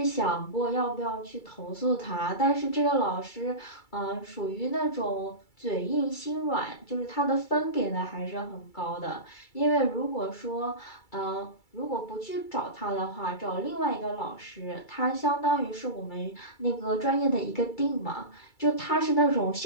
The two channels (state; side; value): late; right; 2.3 ms